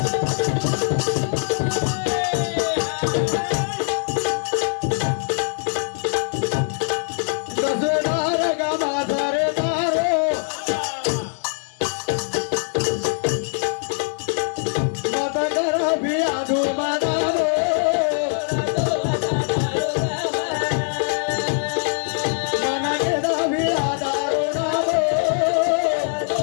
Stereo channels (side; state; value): right; silent; 60 dB below the other